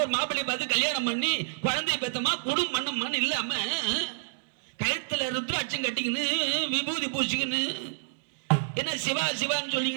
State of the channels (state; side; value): silent; left; digital silence